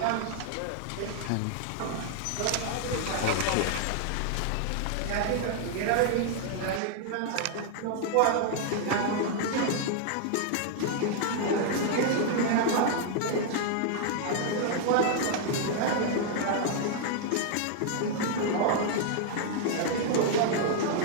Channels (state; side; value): different; both; correlation 0.00